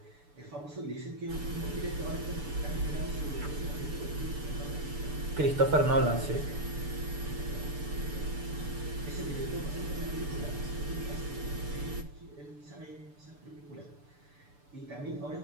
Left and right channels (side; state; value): left; late; 6.9 ms